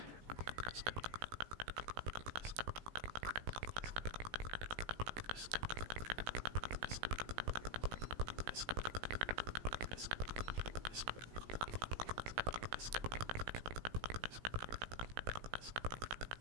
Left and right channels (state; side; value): late; left; 17 ms